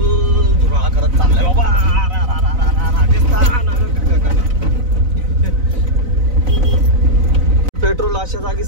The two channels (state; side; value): late; left; 4.0 ms